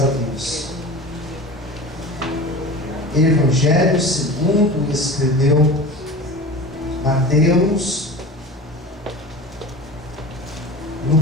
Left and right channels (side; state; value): both; normal; correlation 0.34